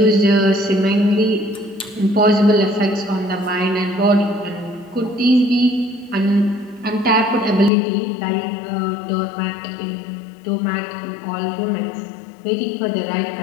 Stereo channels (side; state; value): right; drops out; at 7.7 s